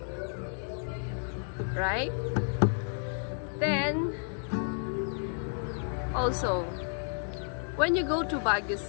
right? Then also, when you go to Baguio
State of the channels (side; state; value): right; silent; 57 dB below the other